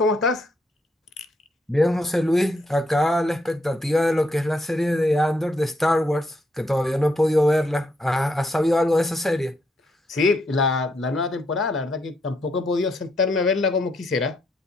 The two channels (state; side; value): normal; both; correlation 0.76